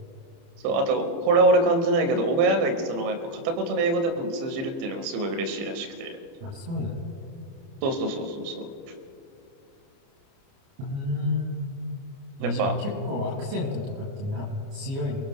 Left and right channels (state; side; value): late; left; 29 ms